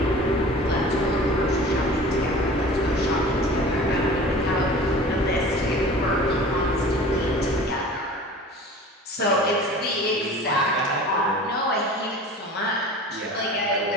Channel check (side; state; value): both; normal; correlation 0.40